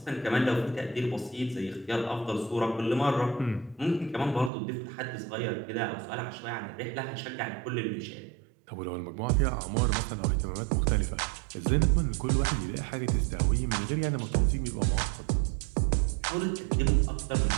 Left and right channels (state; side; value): drops out; left; at 4.5 s